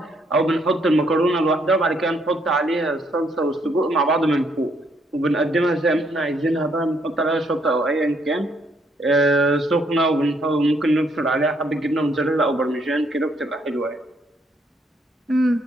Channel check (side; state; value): both; normal; correlation 0.71